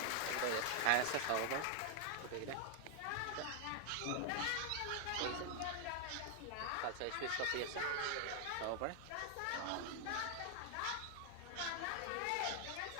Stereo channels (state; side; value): different; both; correlation 0.00